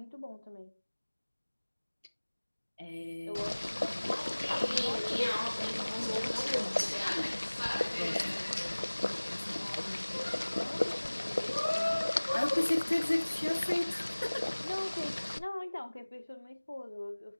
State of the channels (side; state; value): both; inverted; correlation -1.00